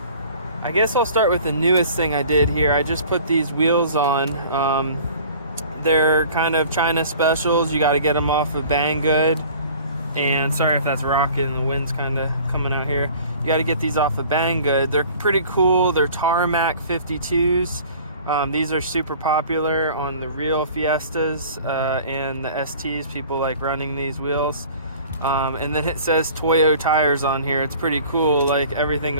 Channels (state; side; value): inverted; both; correlation -0.47